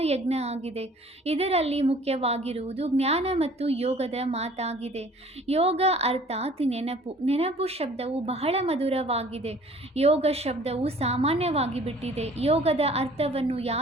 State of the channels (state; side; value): normal; both; correlation 0.52